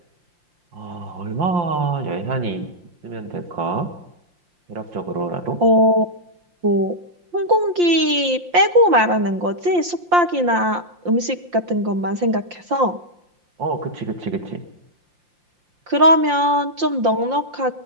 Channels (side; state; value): left; late; 5.7 ms